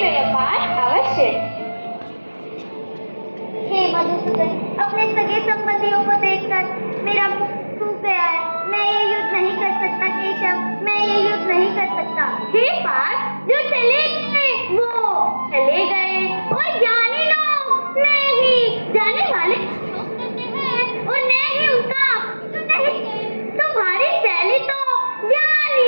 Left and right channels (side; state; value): both; inverted; correlation -1.00